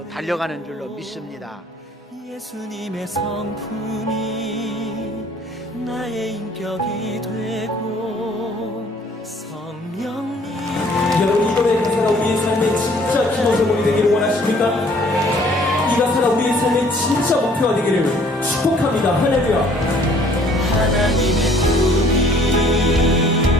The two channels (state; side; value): normal; both; correlation 0.58